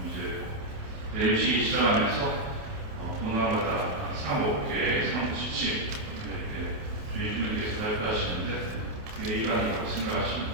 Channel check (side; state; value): left; late; 28 ms